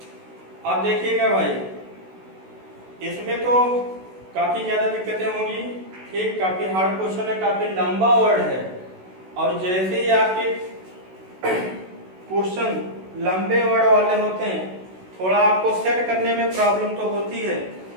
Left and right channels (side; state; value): left; late; 16 ms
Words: अब देखिएगा भाई, इसमें तो काफी ज्यादा दिक्कतें होंगी, ठीक, काफी हार्ड क्वेश्चन है, काफी लंबा वर्ड है, और जैसे ही आपके क्वेश्चन लंबे वर्ड वाले होते हैं थोड़ा आपको सेट करने में प्रॉब्लम तो होती है,